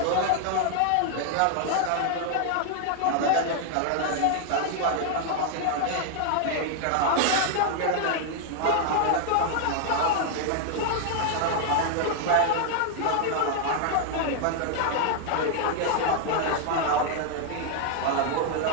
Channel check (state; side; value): different; both; correlation 0.00